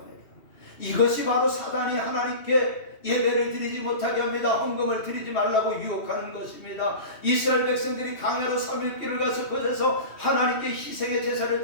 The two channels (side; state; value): right; late; 2.9 ms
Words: 이것이 바로 사단이 하나님께 예배를 드리지 못하게 합니다. 헌금을 드리지 말라고 유혹하는 것입니다. 이스라엘 백성들이 강야로 3일 길을 가서 그곳에서 하나님께 희생의 제사를